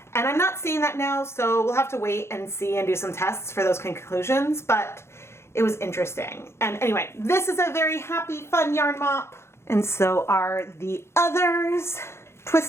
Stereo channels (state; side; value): late; right; 0.13 ms